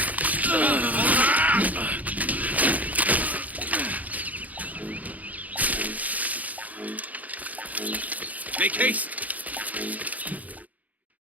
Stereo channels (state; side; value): late; left; 0.076 ms